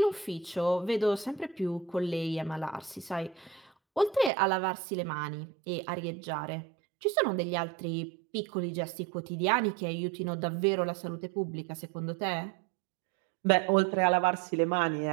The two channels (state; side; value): drops out; left; at 4.3 s